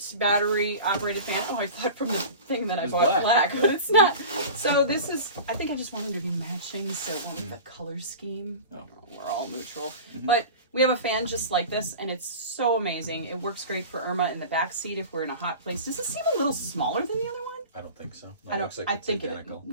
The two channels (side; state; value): both; inverted; correlation -0.35